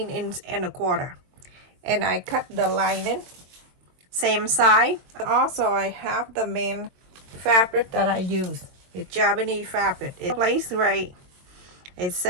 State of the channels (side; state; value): left; late; 22 ms